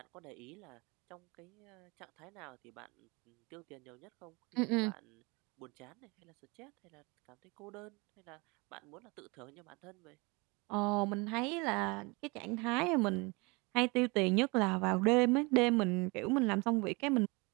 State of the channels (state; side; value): quieter; left; 27.3 dB